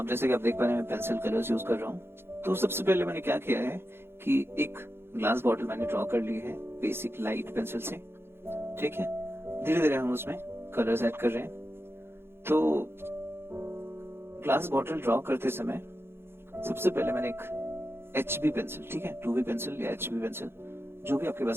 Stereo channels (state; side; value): late; left; 0.11 ms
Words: जैसे कि आप देख पा रहे हैं मैं पेंसिल कलर्स यूज कर रहा हूँ। तो सबसे पहले मैंने क्या किया है कि एक ग्लास बॉटल मैंने ड्रॉ कर ली है बेसिक लाइट पेंसिल से। ठीक है, धीरे धीरे हम उसमें कलर्स ऐड कर रहे हैं। तो ग्लास बॉटल ड्रॉ करते समय सबसे पहले मैंने एक HB पेंसिल, ठीक है, 2B पेंसिल या HB पेंसिल, जो भी आपके